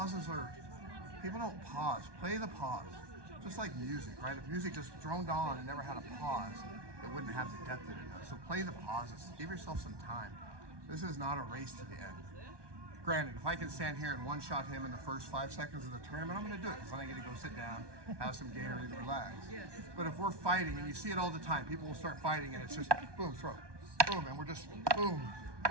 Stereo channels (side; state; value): left; late; 1.2 ms